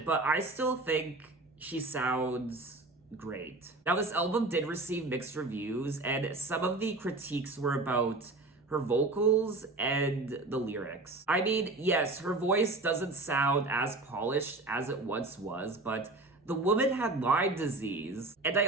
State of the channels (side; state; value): left; quieter; 3.1 dB